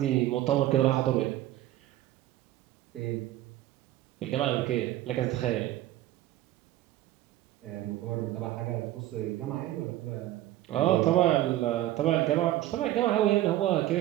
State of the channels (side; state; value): left; quieter; 14.5 dB